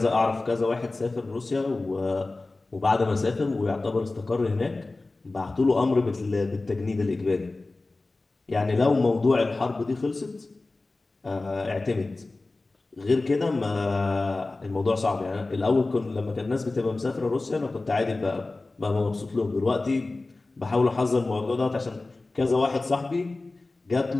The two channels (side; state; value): right; quieter; 3.3 dB